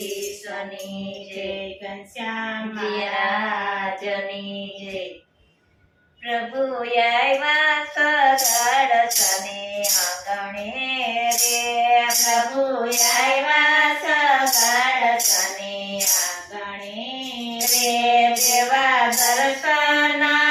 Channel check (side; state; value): both; identical; correlation 1.00